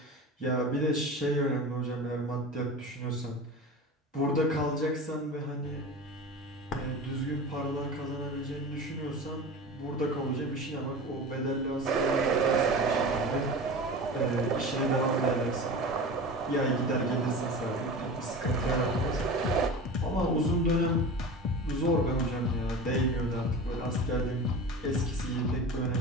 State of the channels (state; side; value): normal; both; correlation 0.32